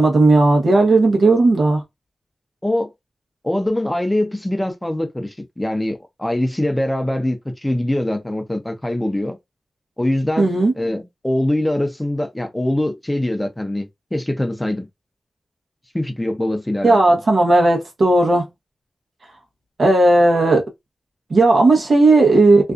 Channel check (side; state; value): both; normal; correlation 0.92